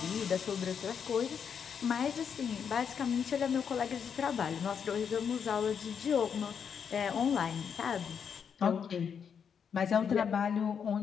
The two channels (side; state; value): right; quieter; 7.2 dB